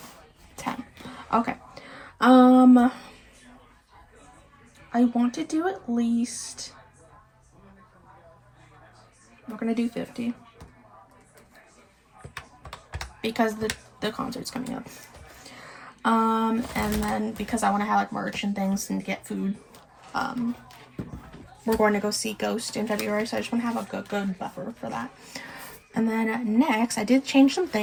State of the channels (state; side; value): identical; both; correlation 1.00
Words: 10. Okay. I want to do at least, we're gonna do 50 because the concert's coming up. And then because I want to have like merch and things and get food, we're going to go see Ghost in February, so I just want to have a good buffer for that. And then next, I did change some